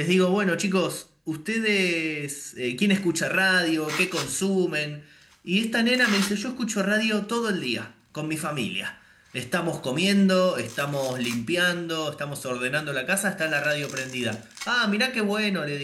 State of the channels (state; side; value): identical; both; correlation 1.00